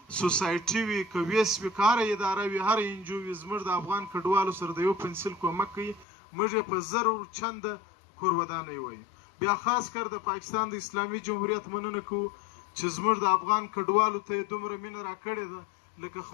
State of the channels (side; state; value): right; drops out; at 6.1 s